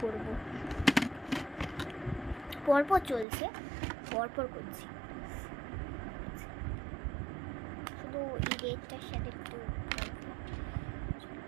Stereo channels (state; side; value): drops out; left; at 3.2 s